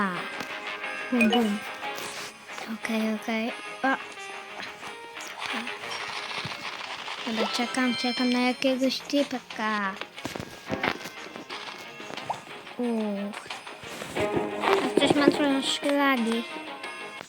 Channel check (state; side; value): identical; both; correlation 1.00